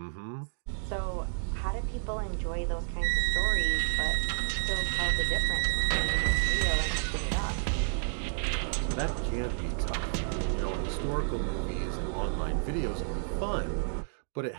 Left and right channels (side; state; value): left; silent; digital silence